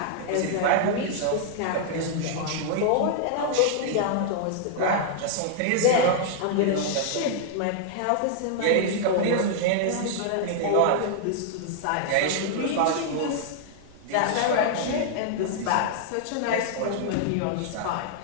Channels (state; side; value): different; both; correlation -0.01